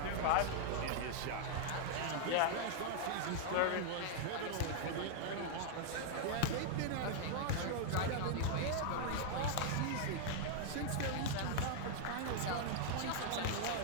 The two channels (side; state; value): both; different; correlation 0.00